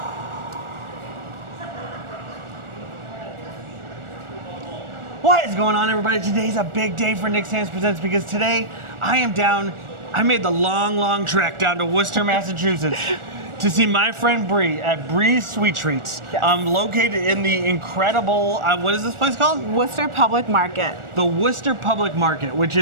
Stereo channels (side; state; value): left; late; 1.4 ms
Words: What is going on, everybody? Today's a big day for Nick's Hands Presents because today I made the long trek down to Worcester, Massachusetts to see my friend Bree at Bree's Sweet Treats. Yes. Located in the incredible, what is this place called? Worcester Public Market. The Worcester Public Market, which